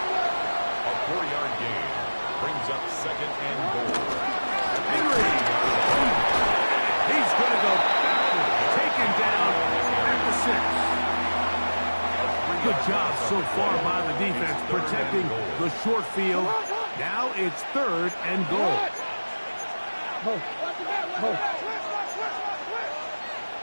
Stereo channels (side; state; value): both; inverted; correlation -1.00